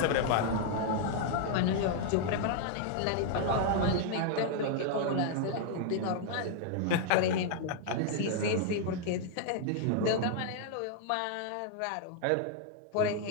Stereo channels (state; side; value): different; both; correlation 0.00